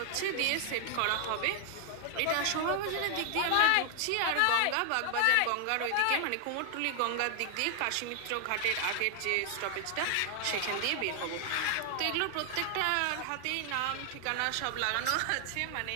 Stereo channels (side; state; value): both; different; correlation 0.00